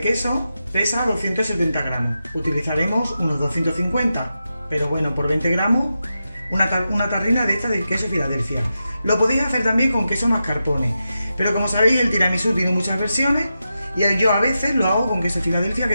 pesa 270 gramos, utilizaremos unos 250, pero bueno, por 20 gramos una tarrina de esta de queso Filadelfia. Lo podéis hacer también con queso mascarpone, pero como sabéis el tiramisú tiene muchas versiones y yo a veces lo hago con queso Filadelfia,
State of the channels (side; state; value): both; inverted; correlation -0.89